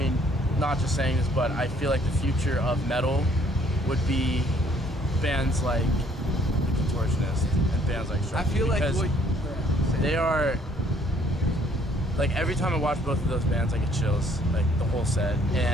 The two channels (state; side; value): normal; both; correlation 0.62